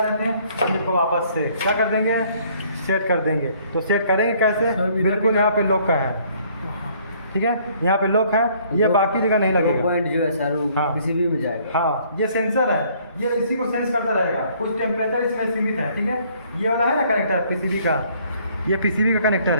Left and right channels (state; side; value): inverted; both; correlation -0.62